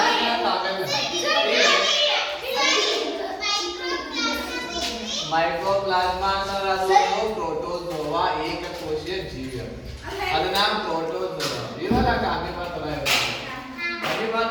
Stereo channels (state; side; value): identical; both; correlation 1.00